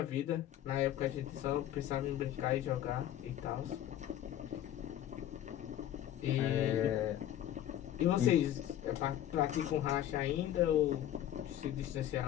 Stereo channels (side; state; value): right; quieter; 11.9 dB